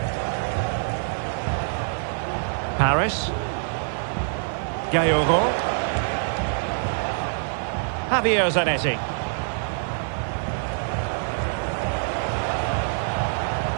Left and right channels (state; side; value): silent; left; 62 dB below the other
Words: Paris. Gaillero. Javier Zanetti.